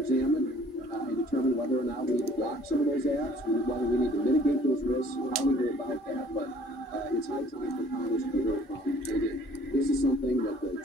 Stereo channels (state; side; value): normal; both; correlation 0.56